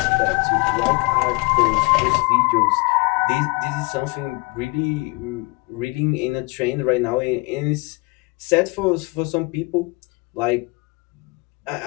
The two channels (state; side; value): quieter; right; 28.2 dB